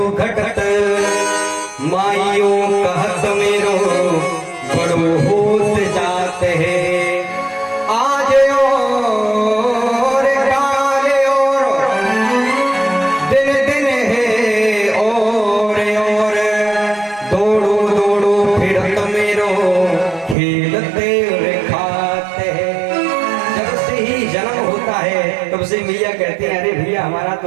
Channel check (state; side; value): drops out; left; at 20.4 s